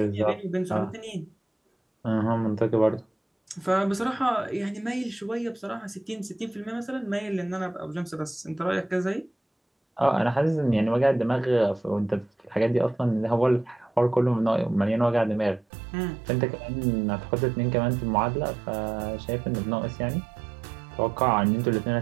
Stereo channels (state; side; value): drops out; left; at 15.7 s